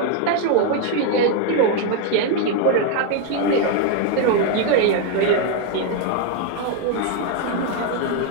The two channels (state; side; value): different; both; correlation 0.00